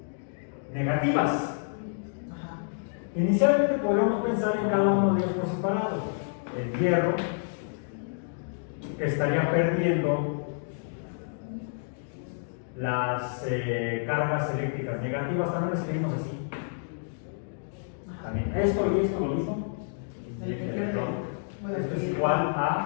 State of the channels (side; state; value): right; silent; digital silence